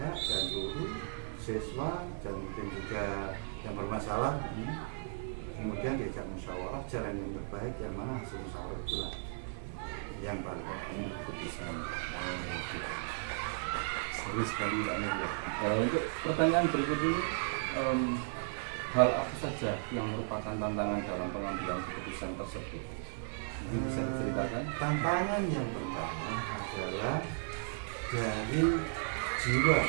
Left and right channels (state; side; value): silent; left; 54 dB below the other